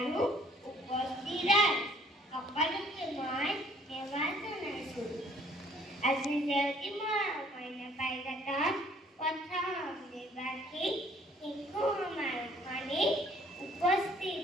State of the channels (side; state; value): both; normal; correlation 0.59